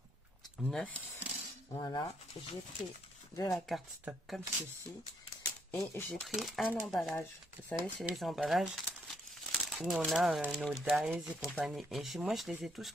9. Voilà. J'ai pris de la carte stock comme ceci. Et j'ai pris un emballage. Vous savez, c'est les emballages où on a nos dies et compagnie. Et moi, je les ai tous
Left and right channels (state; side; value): normal; both; correlation 0.72